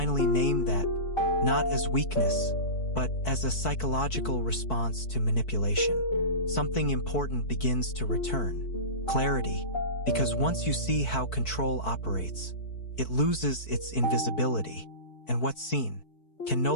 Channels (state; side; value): late; right; 4.6 ms